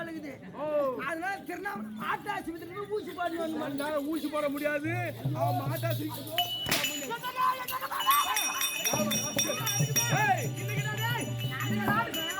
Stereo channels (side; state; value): both; identical; correlation 1.00